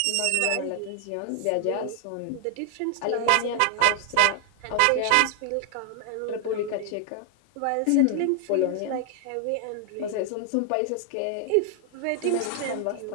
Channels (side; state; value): both; different; correlation 0.00